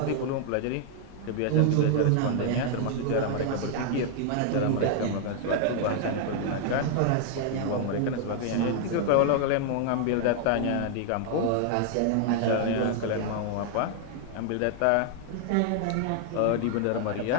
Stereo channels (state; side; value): different; both; correlation 0.00